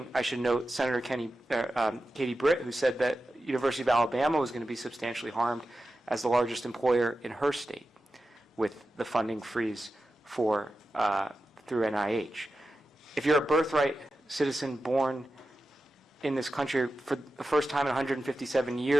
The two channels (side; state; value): both; normal; correlation 0.92